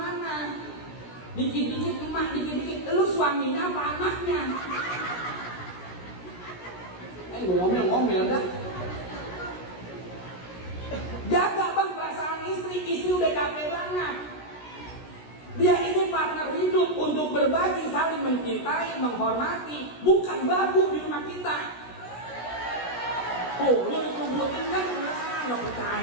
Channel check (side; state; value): right; late; 16 ms